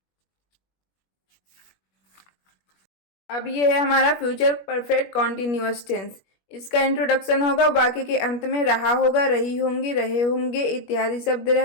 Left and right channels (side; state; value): right; late; 21 ms